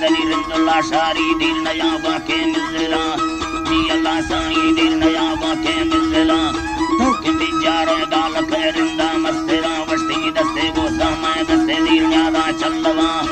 रिंदुल्ला शारी दिल नया बाके मिलला जी अल्लाह साई दिल नया बाके मिलला तो कि बिचारे गाल खैरिंदा मस्तेरा वस्ती दस्ते गो समय दस्ते दिल न्यादा चलवा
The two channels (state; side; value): identical; both; correlation 1.00